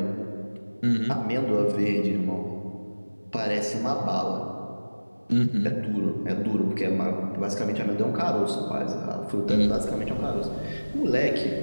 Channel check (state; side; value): inverted; both; correlation -1.00